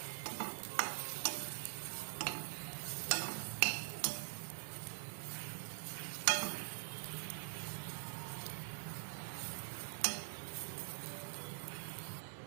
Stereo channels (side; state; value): left; silent; digital silence